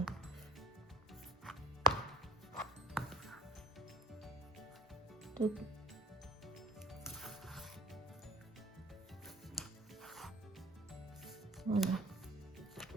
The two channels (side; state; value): both; normal; correlation 0.47